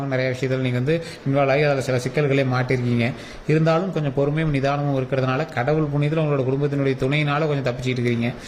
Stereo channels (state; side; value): identical; both; correlation 1.00